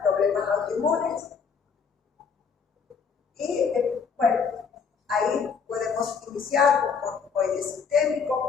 problemas autoinmunes y, bueno, ahí inicial con corticoide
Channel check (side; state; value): right; quieter; 5.9 dB